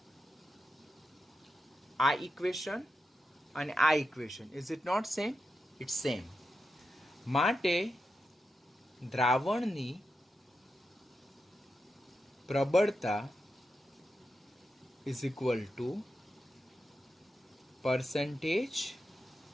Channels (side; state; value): both; normal; correlation 0.88